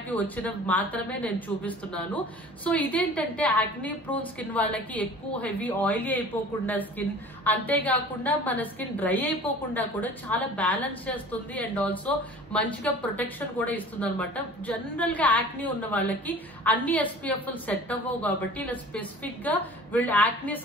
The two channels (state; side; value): normal; both; correlation 0.44